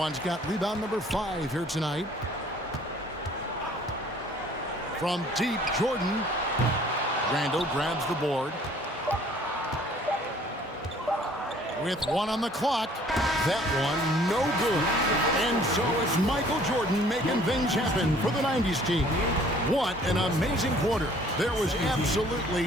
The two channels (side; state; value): both; normal; correlation 0.56